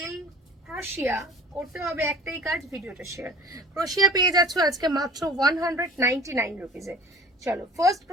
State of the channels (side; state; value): both; normal; correlation 0.43